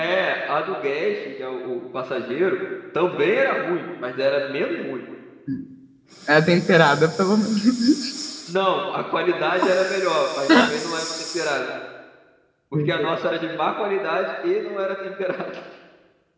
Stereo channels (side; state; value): both; identical; correlation 1.00